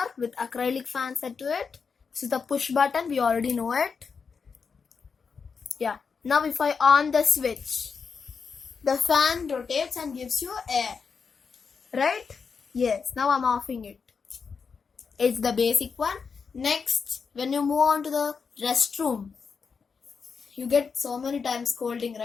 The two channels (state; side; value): quieter; right; 5.6 dB